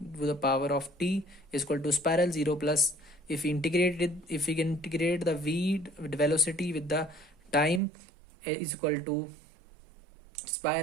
to the power of t is equal to spiral 0 plus, if we integrate it, if we can integrate the v velocity with the time, is equal to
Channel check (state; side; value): drops out; left; at 7.8 s